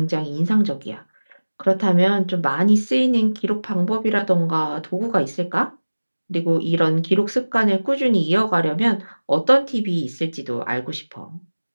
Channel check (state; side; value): inverted; both; correlation -1.00